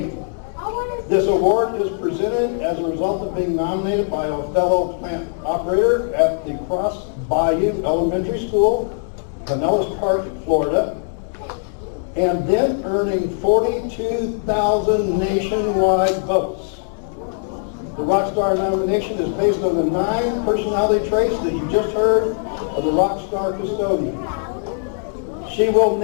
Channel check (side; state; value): right; silent; 61 dB below the other